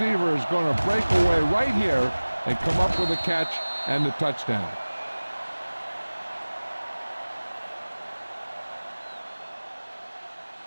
is going to break away right here and come up with a catch and the touchdown.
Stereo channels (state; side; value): inverted; both; correlation -1.00